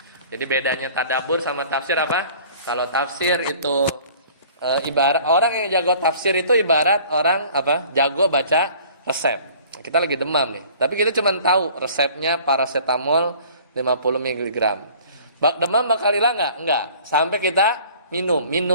Jadi bedanya tadabbur sama tafsir apa? Kalau tafsir itu ibarat orang yang jago tafsir itu ibarat orang apa? Jago baca resep. Kita lagi demam nih, tapi kita cuma tahu resepnya paracetamol 50 mg. Demam bakal hilang nggak? Enggak. Sampai kita minum.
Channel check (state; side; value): inverted; both; correlation -0.50